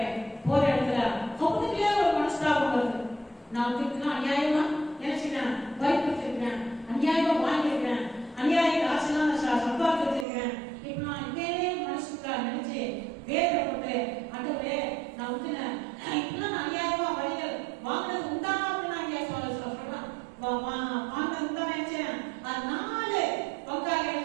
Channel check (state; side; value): drops out; left; at 10.2 s